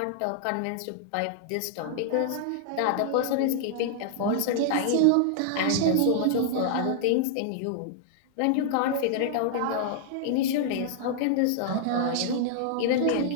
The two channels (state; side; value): different; both; correlation -0.01